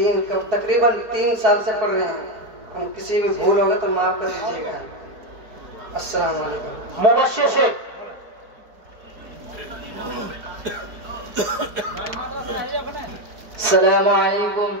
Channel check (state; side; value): late; left; 4.7 ms